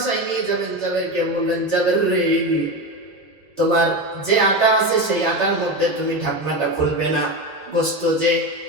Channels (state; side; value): normal; both; correlation 0.20